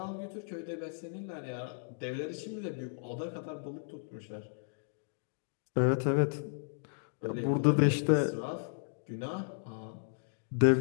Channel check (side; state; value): right; silent; digital silence